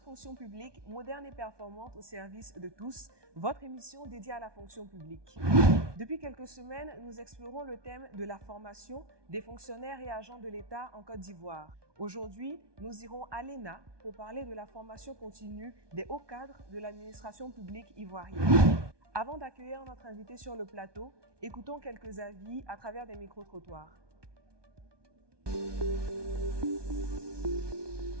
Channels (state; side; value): late; left; 1.2 ms